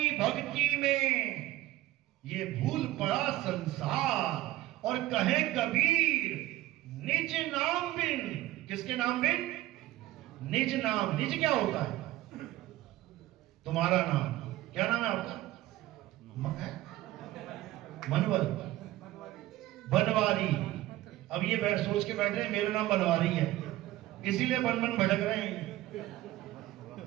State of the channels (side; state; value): left; quieter; 16.0 dB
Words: भक्ति में ये भूल पड़ा संसार, और कहे कबीर निज नाम बिन। किसके नाम बिन? निज नाम। निज क्या होता है? तुम्हारा नाम। क्या नाम है आपका? मनवर, बनवारी। अब ये सोच के बैठ रहे हैं मेरा नाम बनवारी है, इसीलिए बन बन भटक रहे हैं।